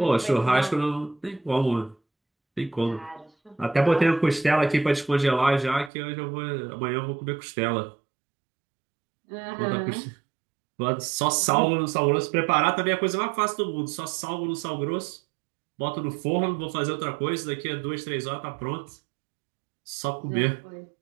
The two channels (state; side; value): drops out; left; at 5.9 s